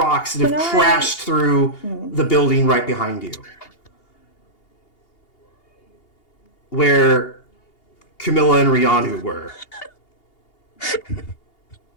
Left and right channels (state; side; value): late; right; 2.8 ms